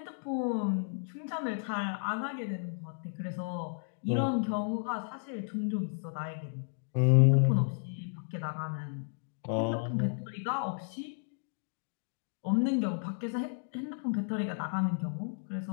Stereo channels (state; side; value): silent; right; digital silence